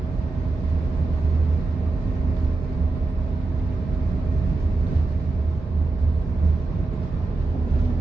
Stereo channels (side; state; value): left; quieter; 3.4 dB